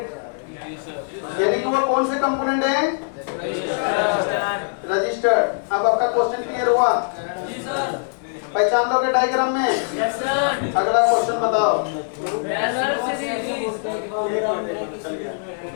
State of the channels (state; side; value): silent; right; digital silence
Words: यानी कि वो कौन से कंपोनेंट है? रजिस्टर्ड। अब आपका क्वेश्चन क्लियर हुआ? पहचान लोगे डायग्राम में? Yes sir. अगला क्वेश्चन बताओ।